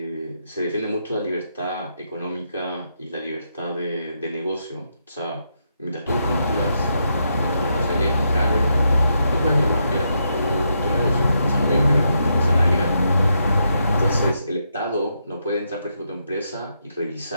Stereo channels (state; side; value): inverted; both; correlation -0.80